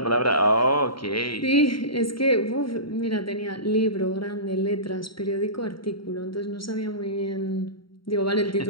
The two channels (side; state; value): right; late; 0.74 ms